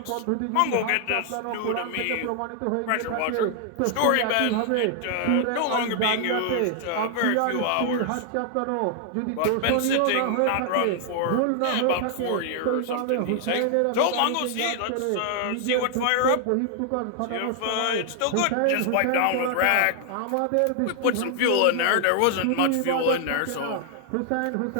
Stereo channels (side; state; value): both; different; correlation 0.00